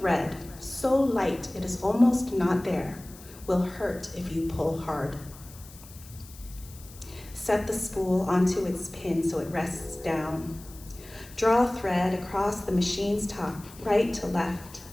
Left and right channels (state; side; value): noise; left; hiss, 20 dB below the sound